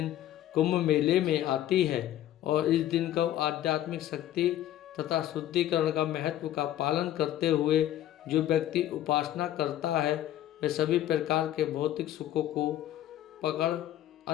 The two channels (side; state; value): right; quieter; 12.7 dB